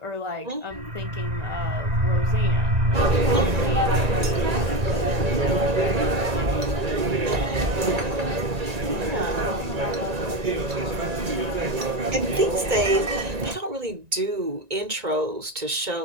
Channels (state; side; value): late; left; 1.9 ms